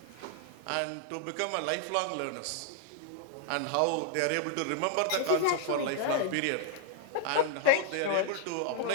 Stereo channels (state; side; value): different; both; correlation -0.01